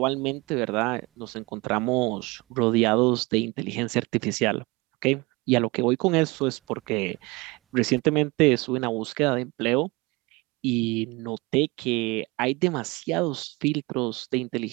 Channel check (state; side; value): quieter; left; 24.9 dB